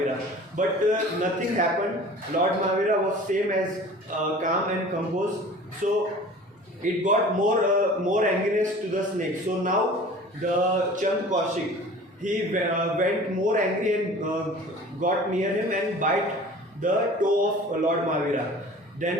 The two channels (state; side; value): normal; both; correlation 0.43